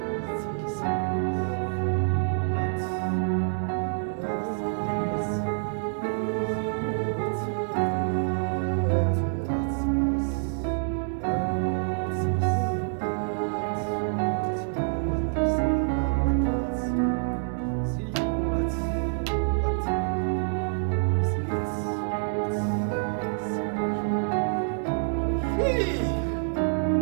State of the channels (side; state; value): left; silent; digital silence